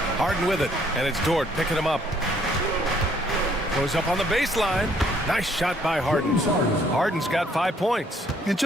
Harden with it, and it's Dort picking him up. Goes up on the baseline. Nice shot by Harden. Harden's got 5 points. And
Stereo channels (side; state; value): both; normal; correlation 0.64